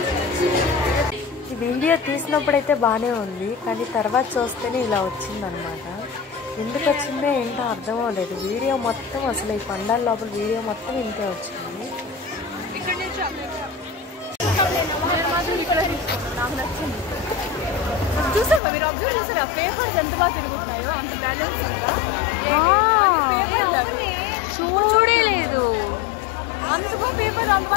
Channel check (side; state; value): right; drops out; at 18.6 s